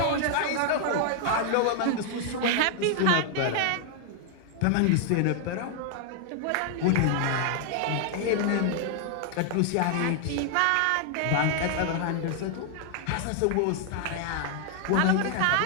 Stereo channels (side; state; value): both; different; correlation 0.00